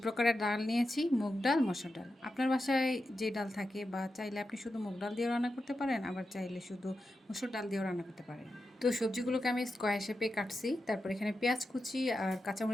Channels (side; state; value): both; normal; correlation 0.90